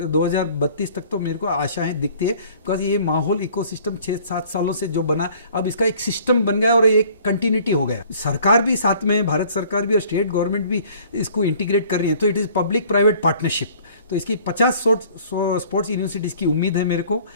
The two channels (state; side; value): inverted; both; correlation -0.53